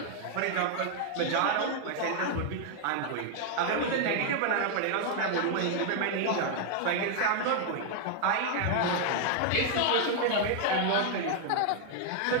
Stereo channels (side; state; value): both; different; correlation 0.00